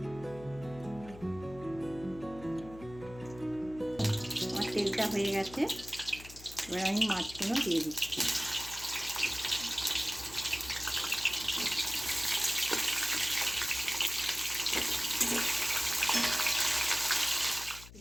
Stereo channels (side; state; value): left; noise; hum, 17 dB below the sound